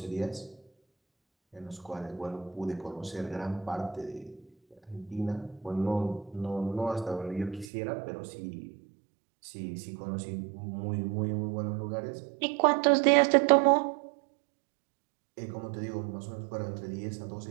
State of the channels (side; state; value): left; drops out; at 7.7 s